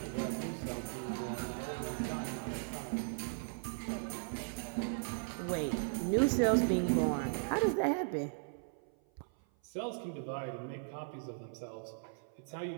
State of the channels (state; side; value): silent; left; 53 dB below the other